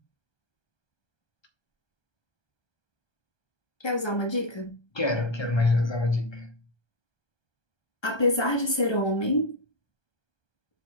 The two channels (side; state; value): right; late; 1.2 ms